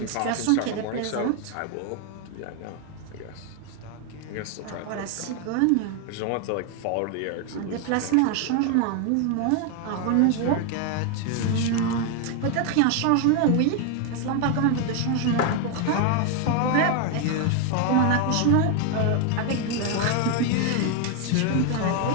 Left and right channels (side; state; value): both; different; correlation 0.01